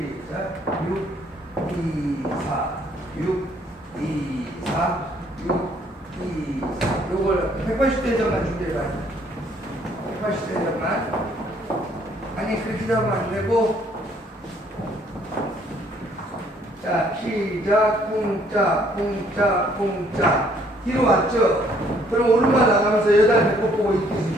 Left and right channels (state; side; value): normal; both; correlation 0.64